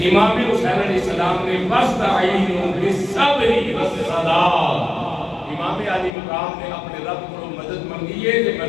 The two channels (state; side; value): drops out; right; at 6.1 s